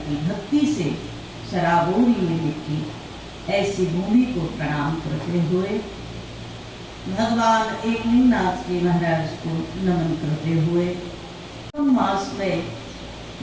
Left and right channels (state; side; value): identical; both; correlation 1.00